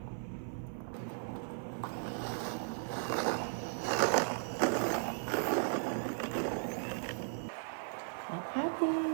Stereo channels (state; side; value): silent; left; 53 dB below the other